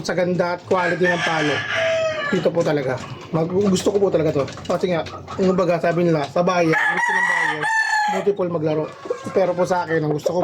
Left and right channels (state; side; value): identical; both; correlation 1.00